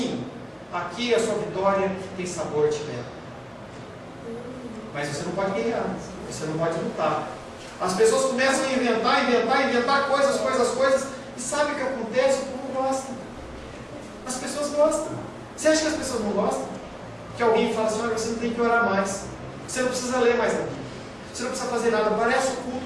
Aqui a sua vitória tem sabor de mel. Mas você não pode guerrear, você não pode lutar. As pessoas começam a inventar coisas, e sabe o que acontece? O povo gosta. As pessoas gostam. Você acha que as pessoas não gostam? Que alguém fala assim: olha, você não tem que orar mais, você não precisa ler mais a Bíblia, você não precisa fazer nada. Parece o culto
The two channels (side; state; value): both; identical; correlation 1.00